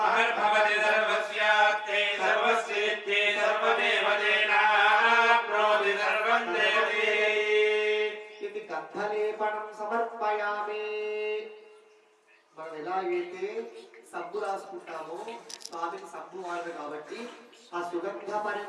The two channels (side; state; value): both; identical; correlation 1.00